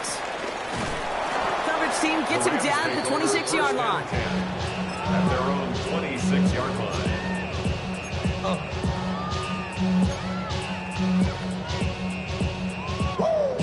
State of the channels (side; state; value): both; identical; correlation 1.00